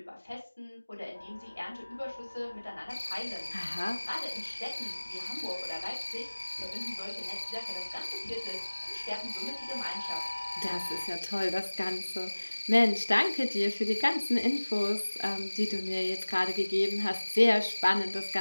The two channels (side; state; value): both; inverted; correlation -1.00